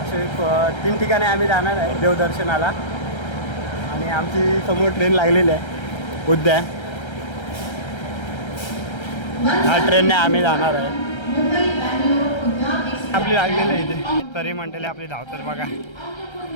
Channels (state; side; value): late; right; 1.3 ms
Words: असे 3 ठिकाणी आम्ही जाणार आहे देवदर्शनाला. आणि आमची समोर ट्रेन लागलेली आहे उद्या. ह्या ट्रेनने आम्ही जाणार आहे. आपली लागलेली आहे इथे. तरी मंडळी आपली धावतात बघा.